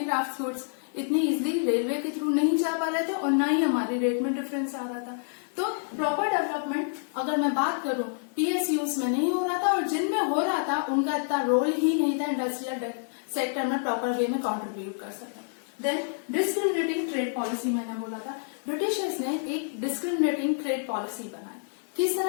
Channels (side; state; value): right; silent; 59 dB below the other